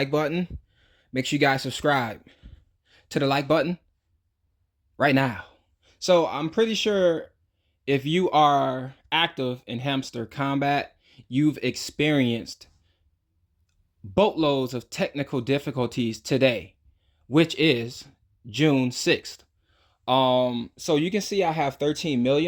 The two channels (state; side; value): identical; both; correlation 1.00